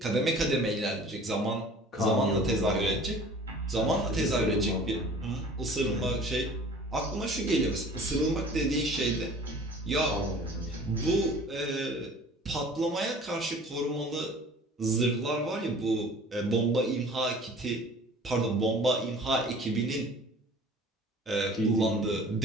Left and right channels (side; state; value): both; normal; correlation 0.46